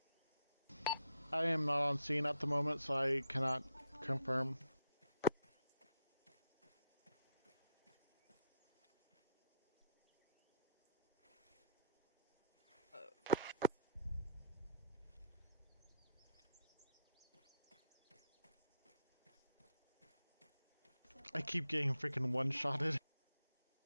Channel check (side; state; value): both; inverted; correlation -0.74